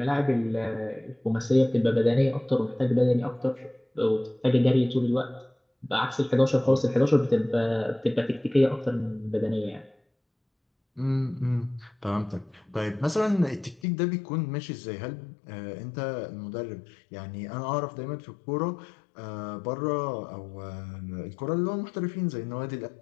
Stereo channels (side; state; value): right; drops out; at 13.8 s